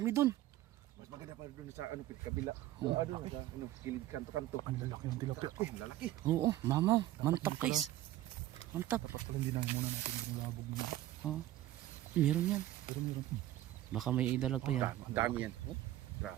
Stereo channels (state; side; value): quieter; left; 14.4 dB